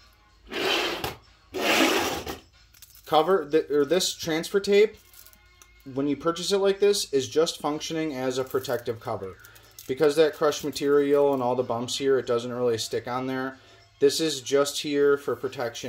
cover, this transfer tape, when you purchase it like this, is just functioning as a protective cover. Because that crushed material and all the bumps here, it doesn't really stick on there. This is just here for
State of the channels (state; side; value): identical; both; correlation 1.00